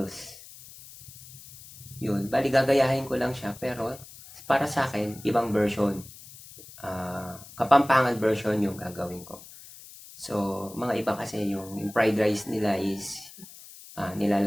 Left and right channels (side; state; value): left; noise; hiss, 18 dB below the sound